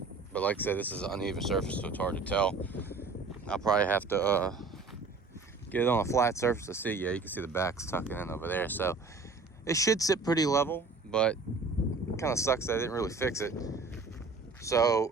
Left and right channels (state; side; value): quieter; left; 4.0 dB